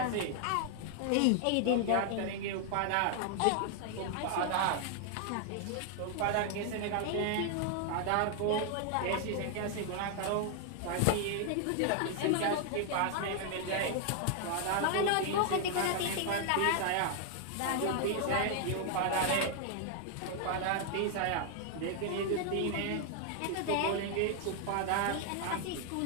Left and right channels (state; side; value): different; both; correlation 0.00